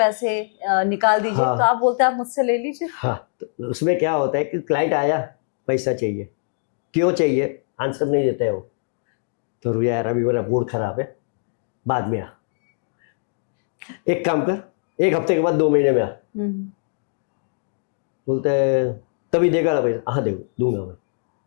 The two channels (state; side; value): silent; right; digital silence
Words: निकाल दीजिए, हाँ, तो आप बोलते हैं आप मुझसे ले लीजिए। हाँ, तो उसमें क्या होता है कि क्लाइंट आया, पैसा चाहिए, क्यों चाहिए आंसर नहीं देते हो, तो रुया यार अभी मेरा मूड खराब है, बाद में आ। एक काम कर, 1 हफ्ते के बाद 2 महीने में आ। बोलते हैं तभी देगा ना पैसा? हाँ दूंगा मैं।